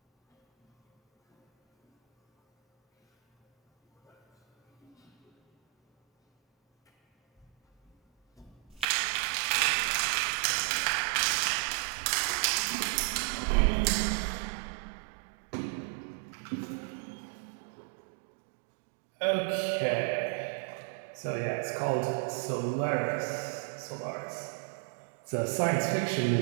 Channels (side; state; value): left; drops out; at 8.8 s